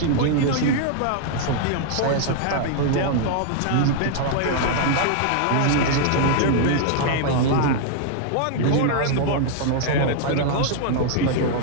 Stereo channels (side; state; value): both; different; correlation 0.00